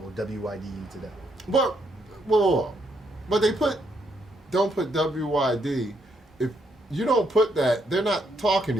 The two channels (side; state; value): both; normal; correlation 0.75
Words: will WYD you to death. But but they don't put WYD. If you don't put that, they're not talking